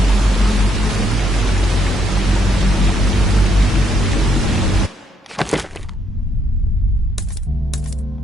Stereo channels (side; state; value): both; normal; correlation 0.73